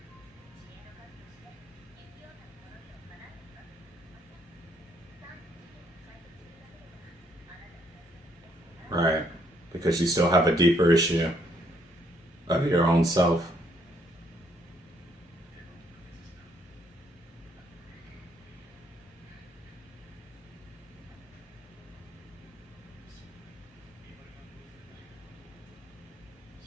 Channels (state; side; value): normal; both; correlation 0.70